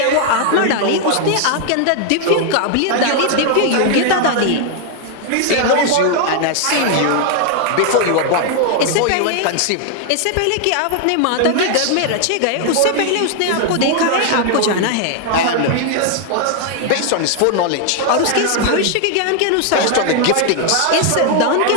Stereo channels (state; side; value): different; both; correlation 0.00